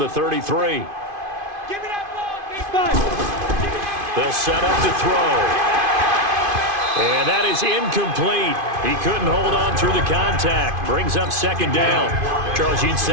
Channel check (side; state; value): left; late; 2.5 ms